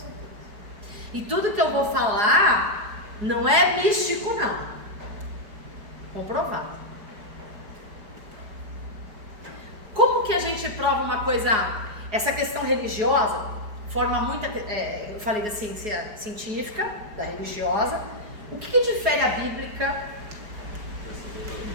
isso. E tudo que eu vou falar não é místico, não. Comprovado. Como que a gente prova uma coisa, essa questão religiosa, forma muita, eu falei da ciência científica, da religiosa, o que difere a bíblica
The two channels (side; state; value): left; late; 4.8 ms